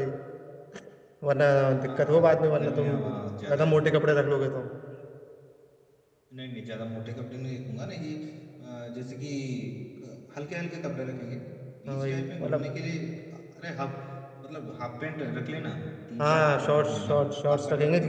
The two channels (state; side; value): identical; both; correlation 1.00